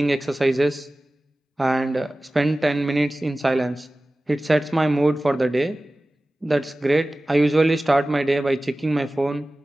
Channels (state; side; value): normal; both; correlation 0.97